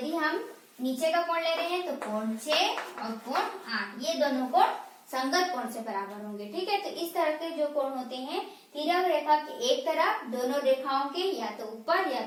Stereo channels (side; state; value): both; identical; correlation 1.00